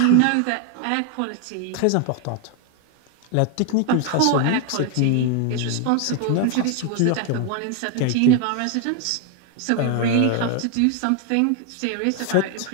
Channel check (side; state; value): both; different; correlation 0.01